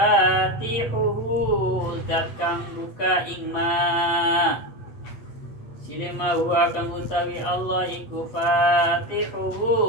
zat kang buka ing ma. Sinima huwa kang utawi Allah iku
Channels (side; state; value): right; late; 8.2 ms